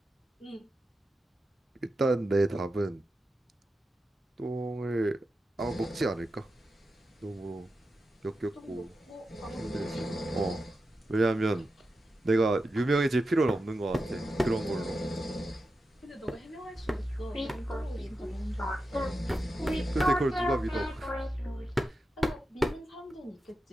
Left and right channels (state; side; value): normal; both; correlation 0.90